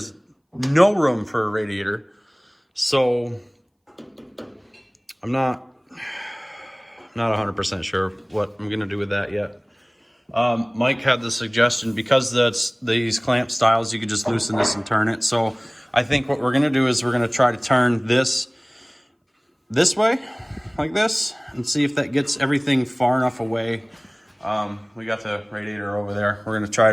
no room for a radiator. So I'm not 100% sure what I'm gonna do with that yet. Mike had the suggestion, because that's these clamp styles, you could just loosen this and turn it. So I think what we're gonna do is we're gonna try to turn this way, like this, and see if that gets everything far enough away. We got the radiator over there. We're gonna try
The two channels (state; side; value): identical; both; correlation 1.00